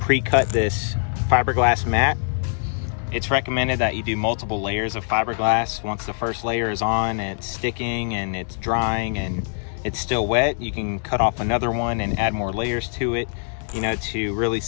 pre-cut this fiberglass mat. It's recommended that you do multiple layers of fiberglass. Once the first layer is on and it's sticking and it's drying and it's still wet, you can cut off another one and add more layers to it, to really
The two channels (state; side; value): silent; right; digital silence